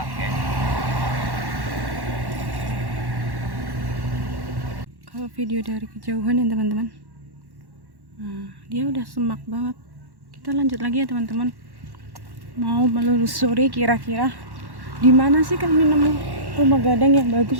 Kalau video dari kejauhan ya teman-teman, nah, dia udah semak banget. Kita lanjut lagi ya teman-teman, mau menelusuri kira-kira di mana sih kami nemu rumah gadang yang bagus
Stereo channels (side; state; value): left; late; 1.1 ms